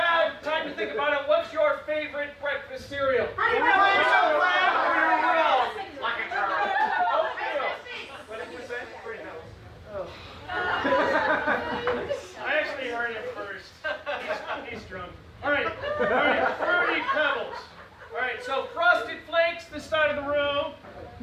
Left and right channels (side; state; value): both; identical; correlation 1.00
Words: time to think about it. What's your favorite breakfast cereal? Honey Oatmeal. Like a girl. Oatmeal. What did you say? Oh. I actually heard it first. He's drunk. All right. Fruity Pebbles. All right. So Frosted Flakes, this side of the room.